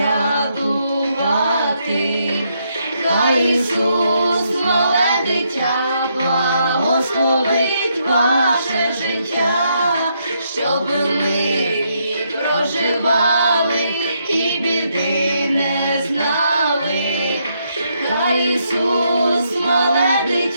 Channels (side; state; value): both; inverted; correlation -0.76